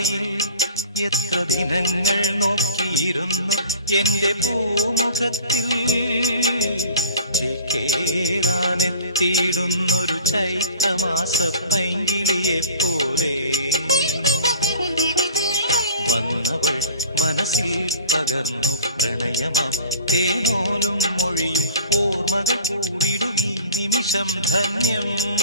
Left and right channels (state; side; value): inverted; both; correlation -0.43